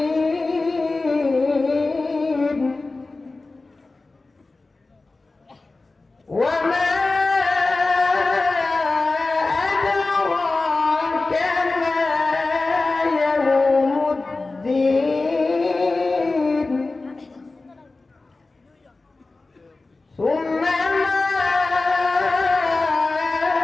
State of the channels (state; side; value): quieter; right; 3.4 dB